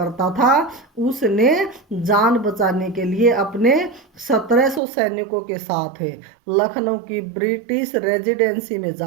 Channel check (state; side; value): drops out; left; at 4.8 s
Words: था, उसने जान बचाने के लिए अपने 1700 सैनिकों के साथ लखनऊ की ब्रिटिश रेजिडेंसी में